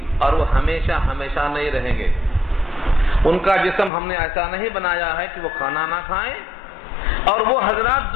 اور وہ ہمیشہ ہمیشہ نہیں رہیں گے۔ ان کا جسم ہم نے ایسا نہیں بنایا ہے کہ وہ کھانا نہ کھائیں، اور وہ حضرات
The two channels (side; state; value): right; drops out; at 3.9 s